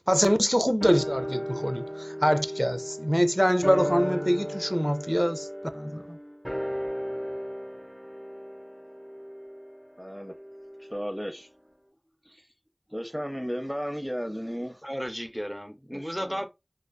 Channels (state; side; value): identical; both; correlation 1.00